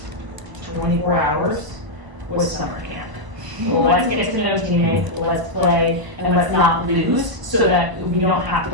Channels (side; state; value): left; late; 1.0 ms